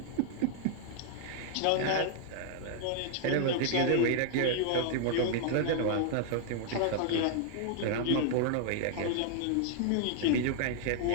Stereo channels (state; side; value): different; both; correlation 0.00